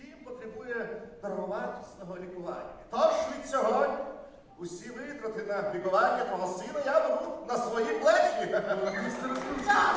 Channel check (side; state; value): both; identical; correlation 1.00